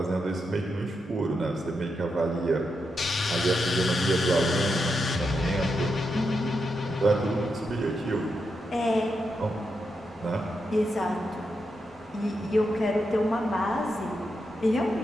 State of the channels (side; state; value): both; normal; correlation 0.85